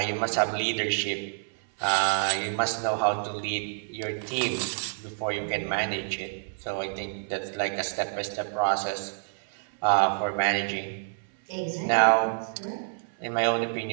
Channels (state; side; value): silent; left; 56 dB below the other